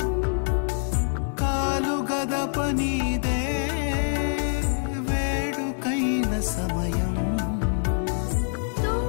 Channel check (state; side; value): silent; right; digital silence